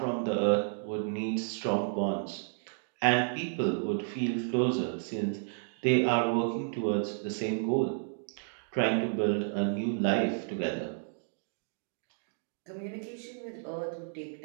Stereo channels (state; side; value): silent; left; digital silence